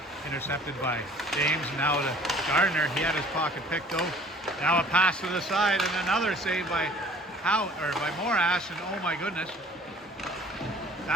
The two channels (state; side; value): normal; both; correlation 0.51